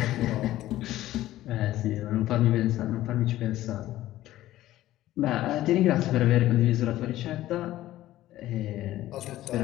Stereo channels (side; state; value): right; quieter; 14.8 dB